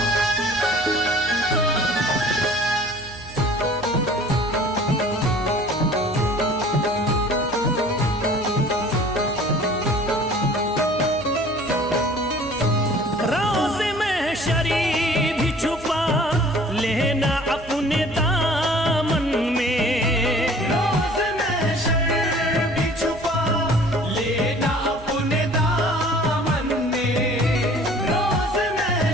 रोज़ में शरीफ भी छुपा लेना अपने दामन में। रोज़ महशर भी छुपा लेना अपने दामन में। रोज़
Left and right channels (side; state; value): right; noise; hum, 17 dB below the sound